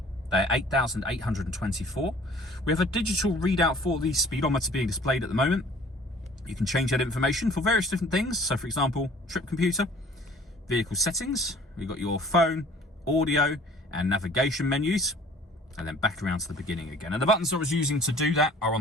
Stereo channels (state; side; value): normal; both; correlation 0.51